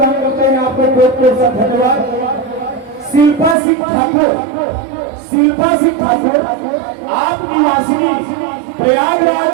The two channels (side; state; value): left; drops out; at 3.6 s